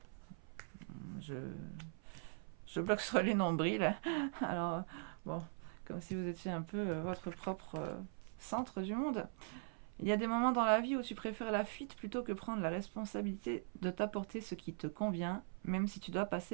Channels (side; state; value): left; silent; 50 dB below the other